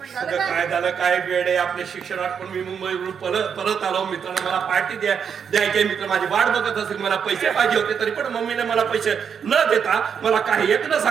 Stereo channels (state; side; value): quieter; left; 7.2 dB